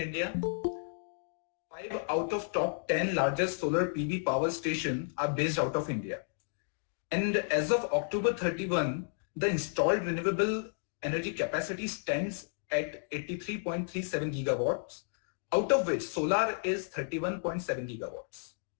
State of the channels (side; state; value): right; silent; digital silence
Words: 5 out of top 10 largest solar PV power stations are based out of India. And as of October 31, the installed renewable energy capacity stands at 83.37 gigawatts, out of which solar is 31.7 gigawatts.